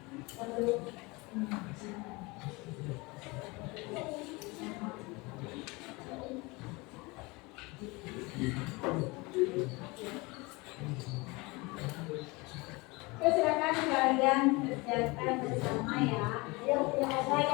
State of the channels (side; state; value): right; quieter; 25.1 dB